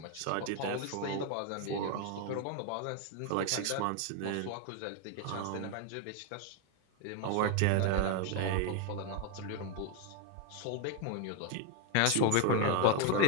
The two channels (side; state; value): both; different; correlation 0.01